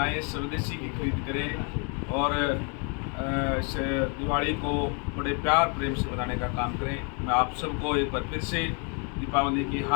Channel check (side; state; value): right; quieter; 36.7 dB